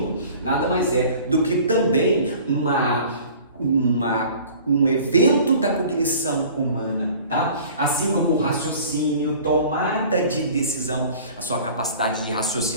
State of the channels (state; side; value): inverted; both; correlation -0.46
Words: nada mais é do que também um evento da cognição humana, tá? Assim como o raciocínio, tomada de decisão, a sua capacidade de